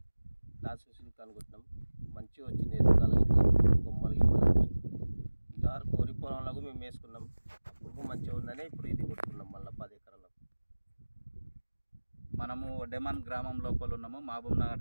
క్లాసిక్ సిల్క్ అని కొట్టినాం. మంచిగా వచ్చింది ఎదుగుదల, ఇట్లా కొమ్మలు గిమ్మలన్నీ. ఇంతవరకు వరి పొలంలో మేము వేసుకున్నాం. అప్పుడు మంచిగా ఉందని ఇప్పుడు ఇది కొట్టుకున్నాం మళ్ళీ 10 ఎకరాలకు. మనము డెమన్ గ్రామం లోపల ఉన్నాము,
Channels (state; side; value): inverted; both; correlation -1.00